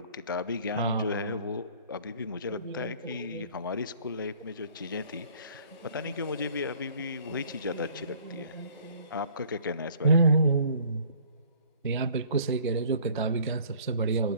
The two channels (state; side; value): inverted; both; correlation -0.54